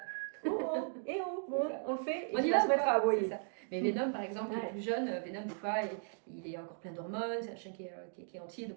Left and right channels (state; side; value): silent; left; digital silence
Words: Oh, et oh, bon, on le fait, et on il va se mettre à aboyer. Mais Venom, par exemple, qui est plus jeune, Venom, des fois, il est encore plein d'hormones, c'est un chien qui est entier, donc